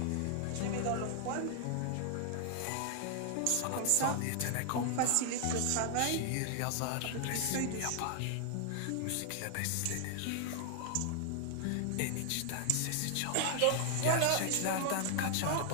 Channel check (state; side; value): different; both; correlation 0.00